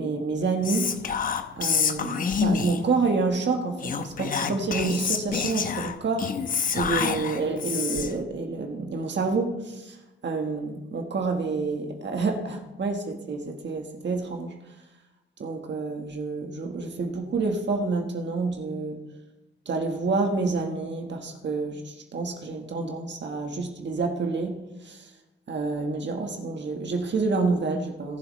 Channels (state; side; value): normal; both; correlation 0.43